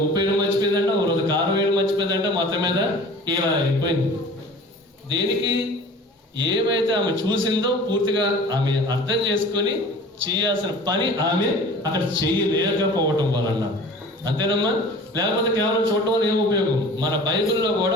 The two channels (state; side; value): normal; both; correlation 0.43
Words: ఉప్పు వేయడం మర్చిపోయిందంట, ఒక రోజు కారం వేయడం మర్చిపోయిందంట, మొత్తం మీద ఇలా అయిపోయింది. దేనికి? ఏమైతే ఆమె చూసిందో పూర్తిగా ఆమె అర్థం చేసుకొని చేయాల్సిన పని ఆమె అక్కడ చేయలేకపోవటం వలన. అంతేనమ్మా? లేకపోతే కేవలం చూడటం వల్ల ఏం ఉపయోగం? మన బైబిల్లో